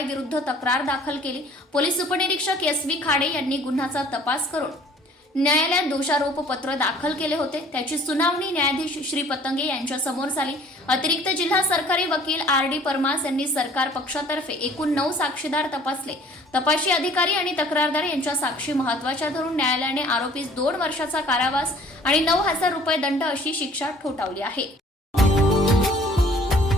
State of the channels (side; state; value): both; normal; correlation 0.53